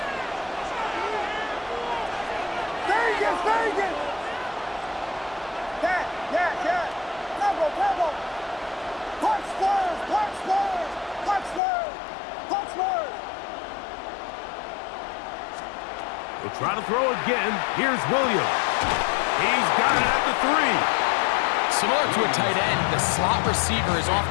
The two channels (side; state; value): right; drops out; at 11.6 s